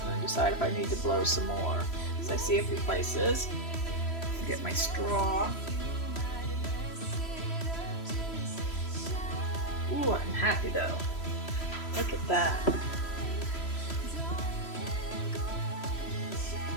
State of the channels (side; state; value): right; late; 3.0 ms